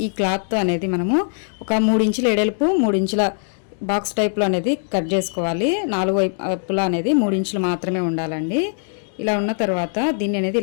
ఈ క్లాత్ అనేది మనము ఒక 3 ఇంచుల ఎడల్పు 3 ఇంచుల బాక్స్ టైప్లో అనేది కట్ చేసుకోవాలి. 4 వైపులా అనేది 3 ఇంచులు మాత్రమే ఉండాలండి. ఇలా ఉన్న తర్వాత దీన్ని అనేది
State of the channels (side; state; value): right; silent; 65 dB below the other